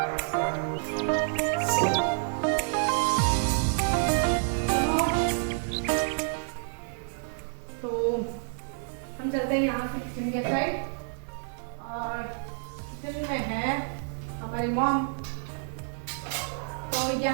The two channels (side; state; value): left; silent; digital silence